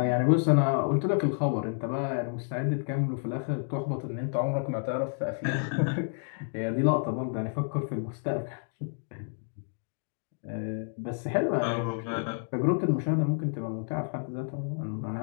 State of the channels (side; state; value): right; silent; digital silence